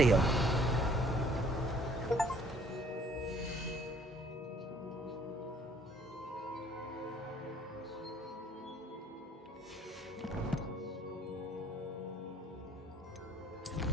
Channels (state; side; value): normal; both; correlation 0.59